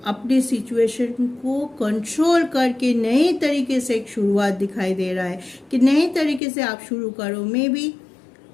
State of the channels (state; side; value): drops out; right; at 6.4 s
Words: अपनी सिचुएशन को कंट्रोल करके नए तरीके से एक शुरुआत दिखाई दे रहा है कि नए तरीके से आप शुरू करो। मे बी